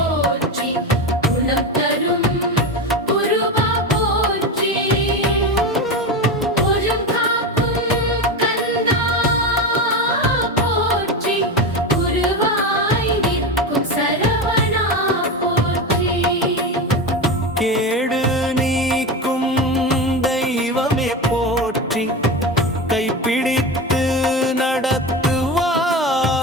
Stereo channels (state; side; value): normal; both; correlation 0.21